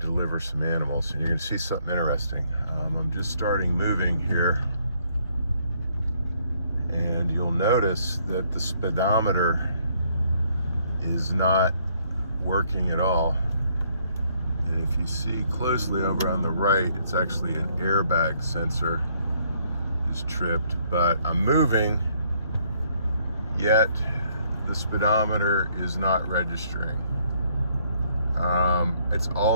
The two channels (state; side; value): inverted; both; correlation -0.68